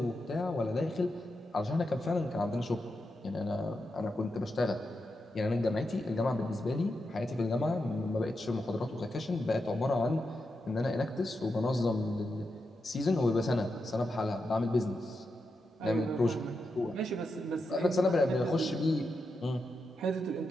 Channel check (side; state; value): both; normal; correlation 0.87